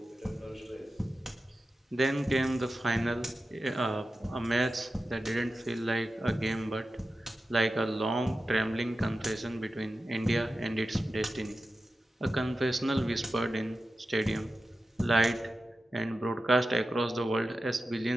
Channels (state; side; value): normal; both; correlation 0.93